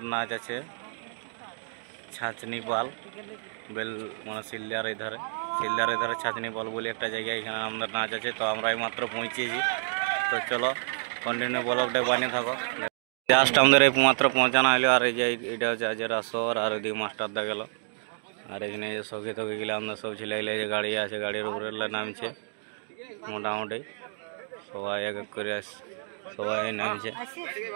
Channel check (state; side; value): silent; left; digital silence